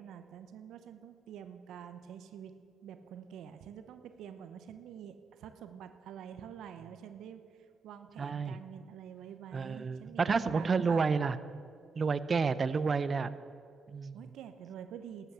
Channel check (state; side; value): quieter; left; 4.8 dB